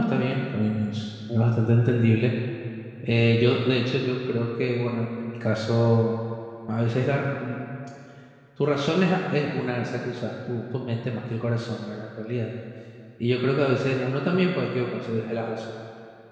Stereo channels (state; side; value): identical; both; correlation 1.00